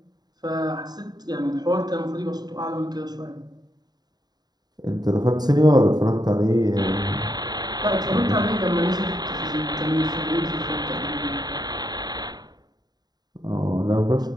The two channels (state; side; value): late; left; 0.20 ms